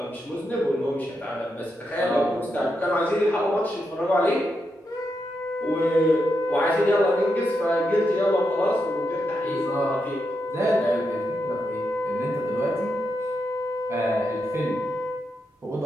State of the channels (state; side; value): normal; both; correlation 0.84